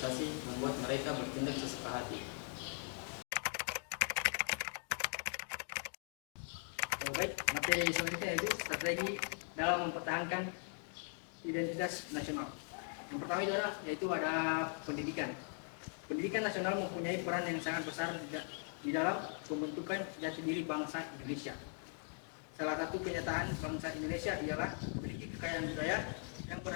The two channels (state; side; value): silent; right; 51 dB below the other